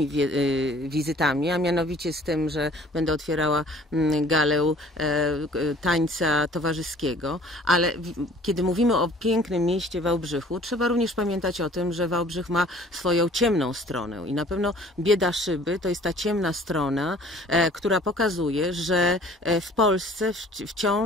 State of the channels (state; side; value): normal; both; correlation 0.52